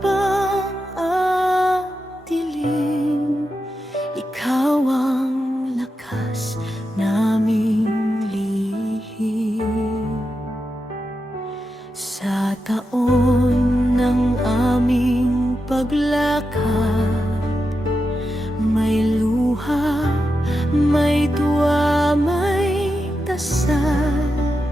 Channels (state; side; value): normal; both; correlation 0.88